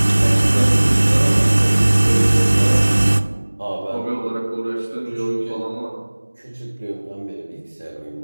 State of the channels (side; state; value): both; inverted; correlation -1.00